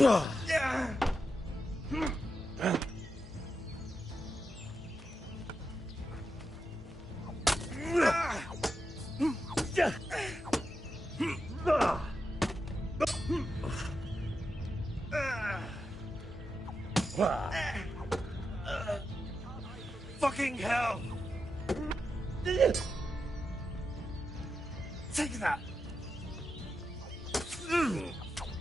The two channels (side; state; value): both; normal; correlation 0.87